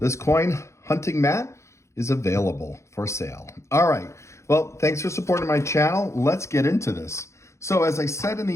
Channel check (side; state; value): right; late; 0.14 ms